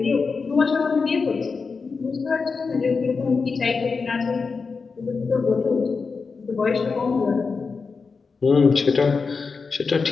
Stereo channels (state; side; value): quieter; right; 4.8 dB